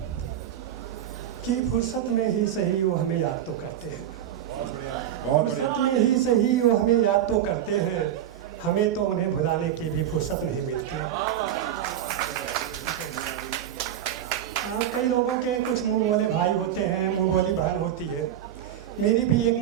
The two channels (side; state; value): left; quieter; 10.7 dB